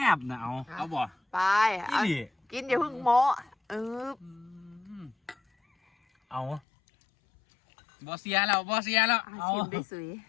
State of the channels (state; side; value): drops out; right; at 6.6 s